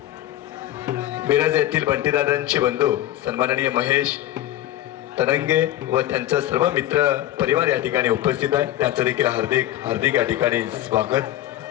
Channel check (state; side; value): quieter; right; 13.8 dB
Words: मिरज येथील बंटीदादांचे बंधू सन्माननीय महेश तरंगे व त्यांचा सर्व मित्र परिवार या ठिकाणी उपस्थित आहे. त्यांचं देखील हार्दिक हार्दिक या ठिकाणी स्वागत.